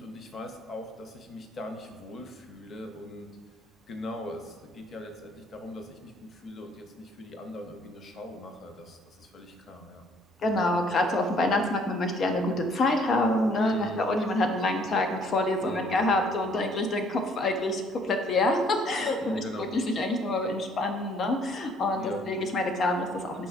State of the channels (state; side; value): normal; both; correlation 0.61